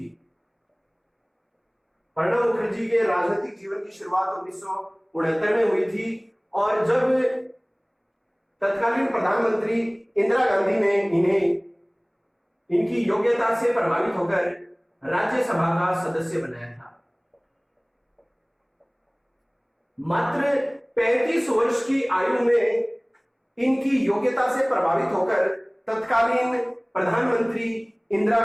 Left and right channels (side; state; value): both; identical; correlation 1.00